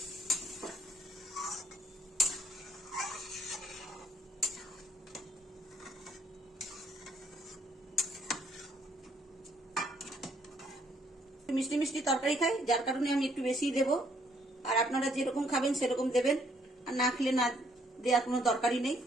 মিষ্টি মিষ্টি তরকারি খাই, যার কারণে আমি একটু বেশি দেব। আর আপনারা যেরকম খাবেন সেরকম দেবেন, আর না খেলে না দেওয়ার কোনো দরকারই নেই।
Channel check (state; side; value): normal; both; correlation 0.67